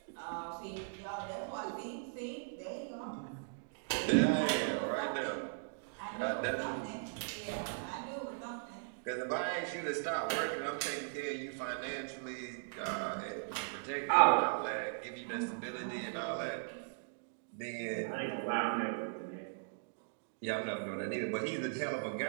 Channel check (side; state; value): left; silent; digital silence